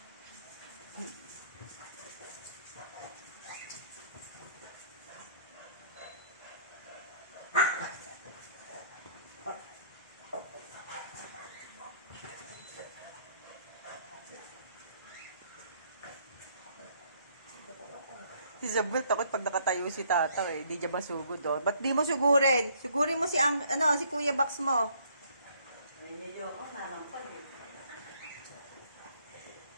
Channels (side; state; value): both; inverted; correlation -0.64